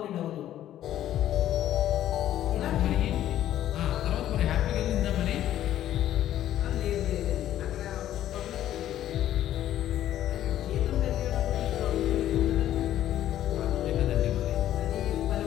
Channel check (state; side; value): quieter; right; 12.2 dB